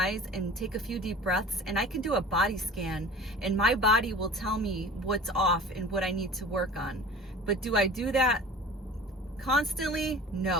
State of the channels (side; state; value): both; normal; correlation 0.40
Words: and take a few deep breaths, and I can do a body scan, and my body will tell me what's off and what I need to work on. But do I do that constantly?